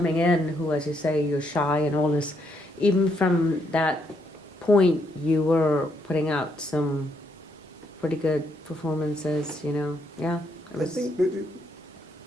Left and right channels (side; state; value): both; normal; correlation 0.75